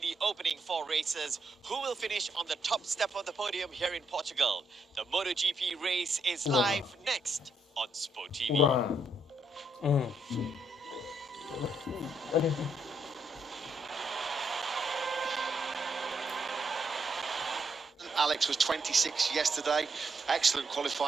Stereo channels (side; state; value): both; normal; correlation 0.76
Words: opening 4 races. Who will finish on the top step of the podium here in Portugal? The MotoGP race is live next on Sport TV. Alex was 26 yesterday. Excellent